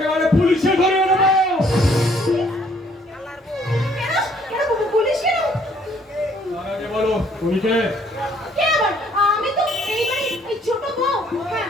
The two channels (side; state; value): both; normal; correlation 0.63